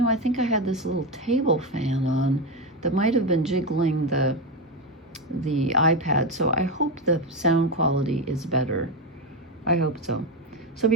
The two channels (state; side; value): normal; both; correlation 0.12